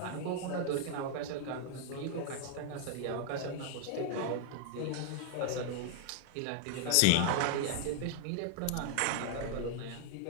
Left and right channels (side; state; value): both; different; correlation 0.00